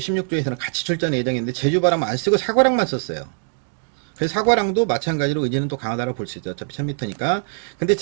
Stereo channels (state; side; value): silent; left; digital silence